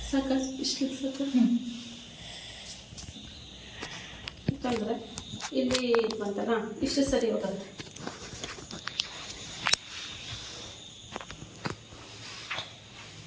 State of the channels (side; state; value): both; identical; correlation 1.00